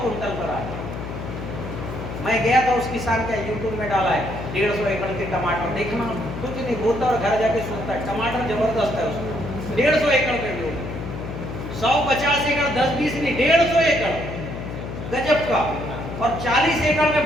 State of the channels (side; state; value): left; noise; hum, 8 dB below the sound